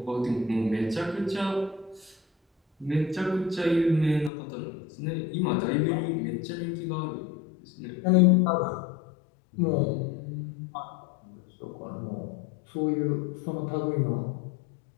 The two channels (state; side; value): drops out; right; at 4.3 s